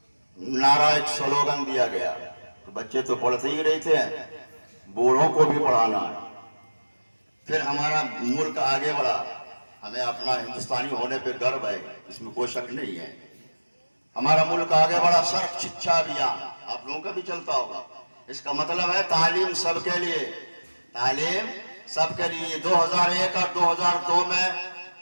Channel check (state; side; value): inverted; both; correlation -1.00